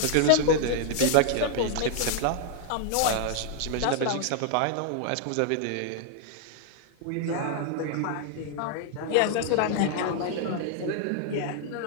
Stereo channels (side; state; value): both; different; correlation 0.00